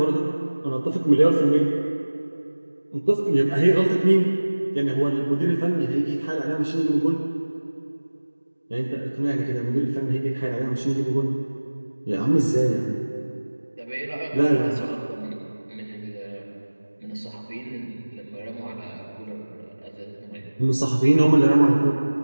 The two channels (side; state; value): both; inverted; correlation -1.00